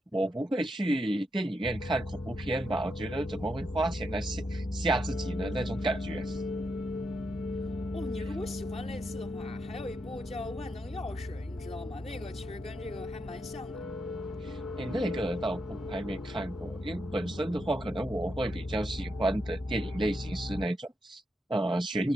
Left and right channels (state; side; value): normal; both; correlation 0.83